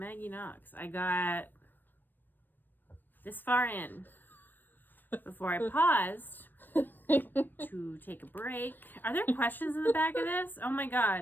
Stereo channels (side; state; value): right; late; 0.092 ms